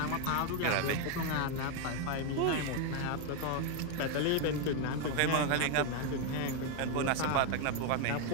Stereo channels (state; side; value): different; both; correlation 0.01